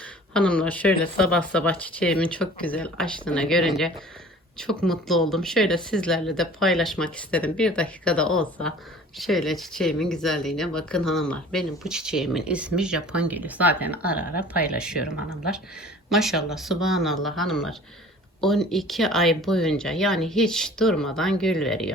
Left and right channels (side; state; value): both; normal; correlation 0.46